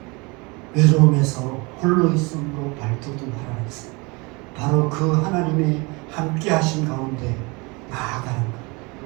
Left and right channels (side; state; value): left; quieter; 27.3 dB